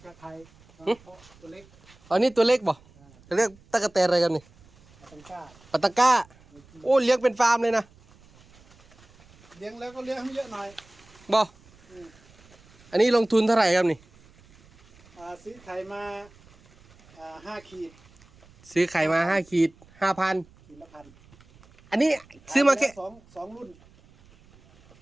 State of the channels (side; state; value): right; noise; rumble, 27 dB below the sound